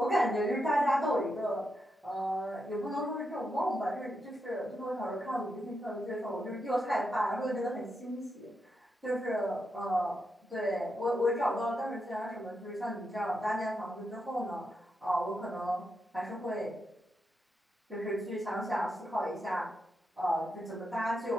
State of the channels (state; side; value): normal; both; correlation 0.84